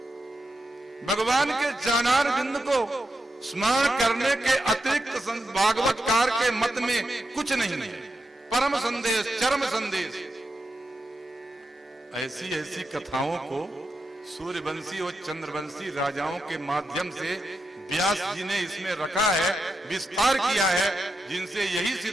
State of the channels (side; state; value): both; normal; correlation 0.86